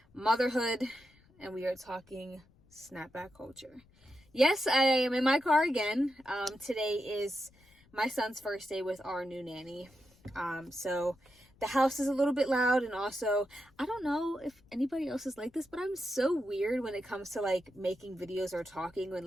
motherhood, and we are talking snapback culture. Yes, I am in my car again. Today is my son's first day with our new nanny. So the house is a little bit loud, and also, I don't know if anybody else is like this, but I'm so weird when it comes to like making videos or talking when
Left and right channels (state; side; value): noise; left; rumble, 29 dB below the sound